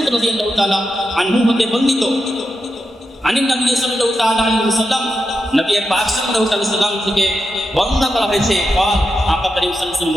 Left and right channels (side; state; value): both; normal; correlation 0.87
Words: রাদিয়াল্লাহু তাআলা আনহু হতে বর্ণিত, আনিন নবী সাল্লাল্লাহু তাআলা আলাইহি ওয়াসাল্লাম, নবী পাক সাল্লাল্লাহু আলাইহি ওয়াসাল্লাম থেকে বর্ণনা করা হয়েছে, আকা করিম সাল্লাল্লাহু আলাইহি ওয়াসাল্লাম